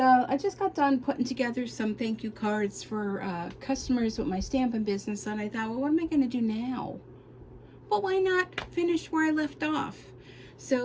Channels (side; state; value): both; identical; correlation 1.00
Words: just got done putting together some thank you cards for customers with my stamping business, and I thought, well, what am I going to do now? Well, why not finish where I left off?